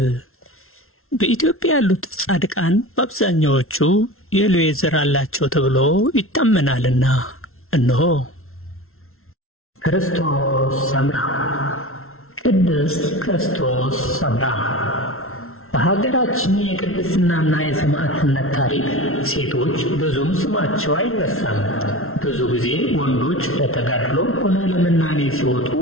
በኢትዮጵያ ያሉት ጻድቃን በአብዛኛዎቹ የሌዊ ዘር አላቸው ተብሎ ይታመናልና እነሆ ክርስቶስ ሰምራ። ቅድስት ክርስቶስ ሰምራ በሀገራችን የቅድስናና የሰማዕትነት ታሪክ ሴቶች ብዙም ስማቸው አይነሳም። ብዙ ጊዜ ወንዶች ለተጋድሎ ሆነ ለመናኔ ሲወጡ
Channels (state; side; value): late; right; 0.62 ms